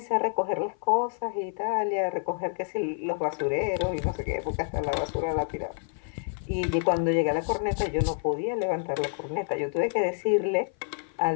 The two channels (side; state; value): right; silent; 55 dB below the other